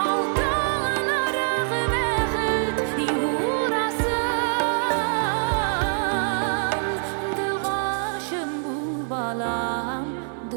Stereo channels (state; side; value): silent; left; 56 dB below the other